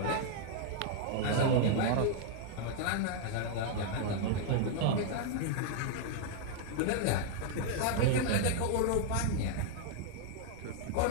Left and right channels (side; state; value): both; different; correlation 0.00